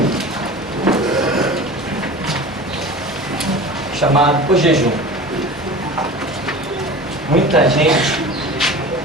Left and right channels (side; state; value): both; normal; correlation 0.36